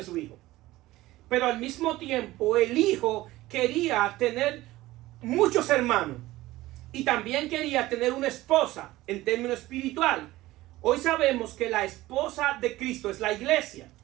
su hijo. Pero al mismo tiempo el hijo quería tener muchos hermanos y también quería tener una esposa en términos espiritual. Hoy sabemos que la esposa de Cristo es la iglesia.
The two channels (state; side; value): quieter; left; 17.4 dB